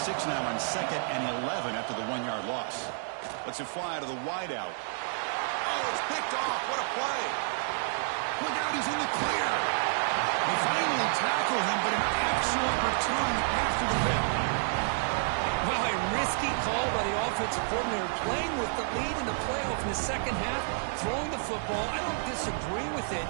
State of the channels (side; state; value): left; silent; digital silence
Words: now on 2nd and 11 after the 1-yard loss. Lets it fly to the wideout. Oh, it's picked off. What a play. Look out, he's in the clear. They finally tackle him, but an excellent return after the hit. Well, a risky call by the offensive coordinator, playing with the lead in the playoff in the second half, throwing the football. I don't disagree with it,